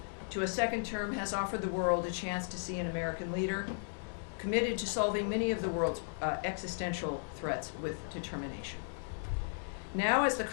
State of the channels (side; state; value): right; silent; digital silence